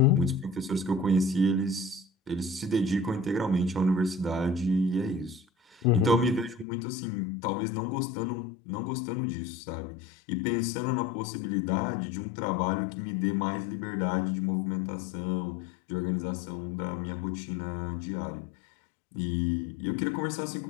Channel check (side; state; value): right; drops out; at 6.7 s